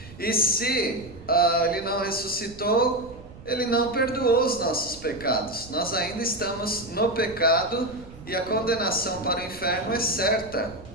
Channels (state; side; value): noise; right; rumble, 18 dB below the sound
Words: E se Ele não ressuscitou, Ele não perdoou os nossos pecados. Nós ainda estamos no pecado e a condenação para o inferno é certa.